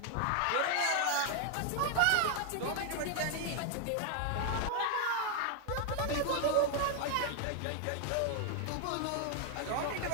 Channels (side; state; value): both; different; correlation 0.00